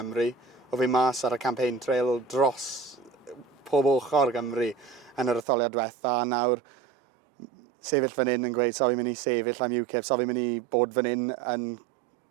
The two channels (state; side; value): drops out; left; at 5.5 s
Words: O fi mas ar y campaign trail dros pob ochr Gymru yn yr etholiad diwetha, a nawr sefyll fan hyn yn gweud so fi'n mynd i sefyll am UKIP, so fi'n mynd i bod fan hyn yn